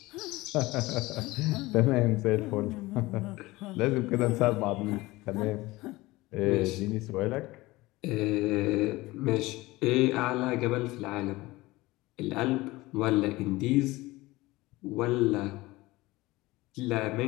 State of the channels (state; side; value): quieter; right; 20.1 dB